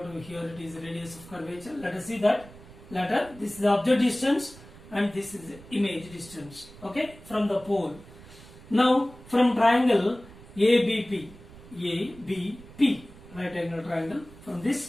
to here it is the radius of curvature. Let us see that later. This is the object distance and this is the image distance, okay, from the pole. Now from triangle ABP, right angle triangle, from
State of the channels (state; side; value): noise; right; rumble, 20 dB below the sound